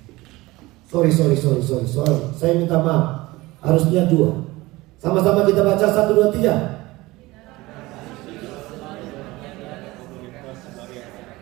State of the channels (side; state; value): left; quieter; 20.2 dB